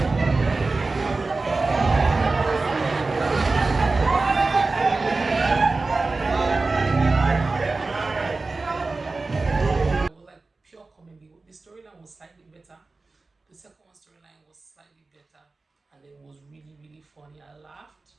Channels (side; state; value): left; quieter; 3.6 dB